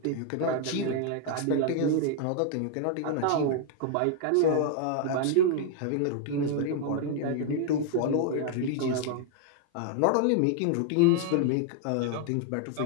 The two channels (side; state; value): both; different; correlation 0.00